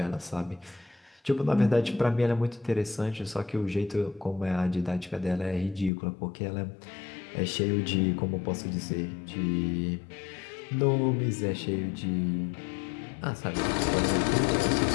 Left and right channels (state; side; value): drops out; right; at 5.9 s